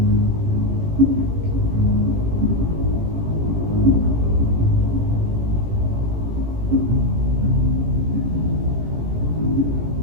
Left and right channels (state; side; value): late; left; 18 ms